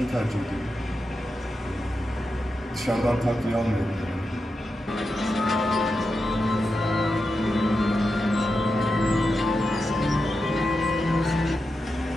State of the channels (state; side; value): normal; both; correlation 0.89